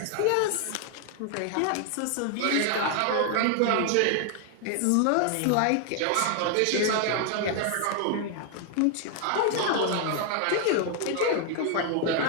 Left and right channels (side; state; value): both; different; correlation 0.00